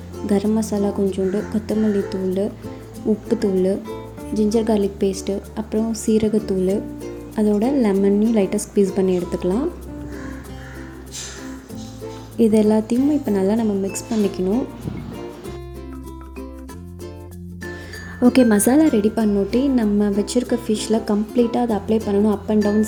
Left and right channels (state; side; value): identical; both; correlation 1.00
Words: கரம் மசாலா கொஞ்சோண்டு, கொத்தமல்லி தூள், உப்புத்தூள், ஜிஞ்சர் கார்லிக் பேஸ்ட்டு, அப்புறம் சீரகத்தூள், அதோட லெமனையும் லைட்டாக ஸ்க்வீஸ் பண்ணி எடுத்துக்கலாம். இது எல்லாத்தையும் இப்போ நல்லா நம்ம மிக்ஸ் பண்ணிக்கணும். ஓகே, மசாலா ரெடி பண்ணோட்டி நம்ம வச்சுருக்க ஃபிஷ்ஷில் கம்ப்ளீட்டாக அதை அப்ளை பண்ணணும். Up and down,